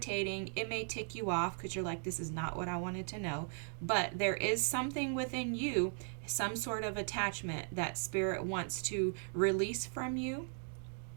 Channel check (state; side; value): silent; left; 53 dB below the other